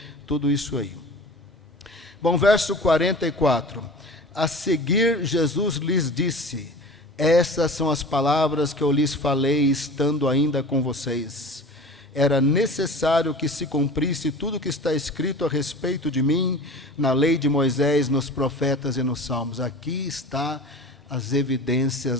tudo isso aí. Bom, verso 44. A seguir, Jesus lhes disse, essas são as palavras que eu lhes falei, estando ainda com vocês. era necessário que se cumprisse tudo o que está escrito a respeito de mim na lei de Moisés, nos profetas e nos salmos. Aqui está as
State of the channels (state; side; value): normal; both; correlation 0.38